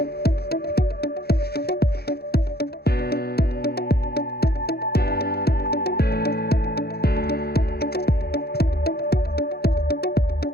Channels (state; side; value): late; right; 0.46 ms